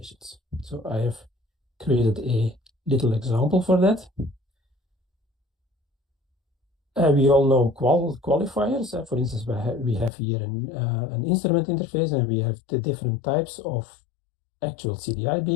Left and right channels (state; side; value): drops out; right; at 10.1 s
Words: So I have created a little example for that. We all know qualifiers. For instance, we have here an instrument interface, and we have the different types of actual CDI